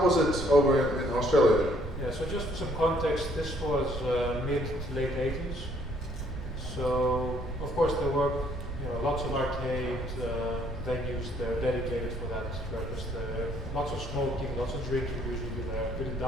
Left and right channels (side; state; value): right; noise; rumble, 8 dB below the sound